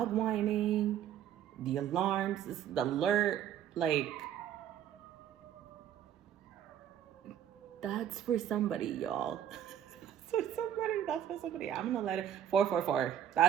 whining, the alarms, the alert, like, that's for somebody, y'all. That's for somebody. I'm gonna let it, 444.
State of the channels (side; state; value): left; quieter; 10.2 dB